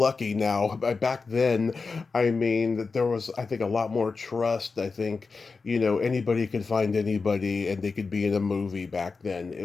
now. Back then, I mean, there was, I think, a lot more trust. I think, anybody could find anybody and they could be in a movie back then. It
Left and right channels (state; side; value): quieter; right; 4.5 dB